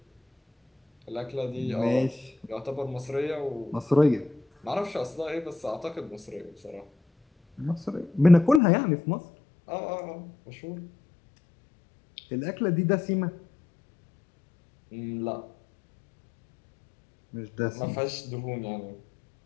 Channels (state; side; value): drops out; right; at 8.6 s